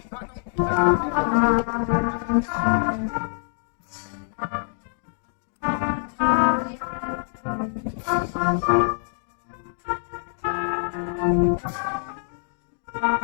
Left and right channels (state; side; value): silent; right; digital silence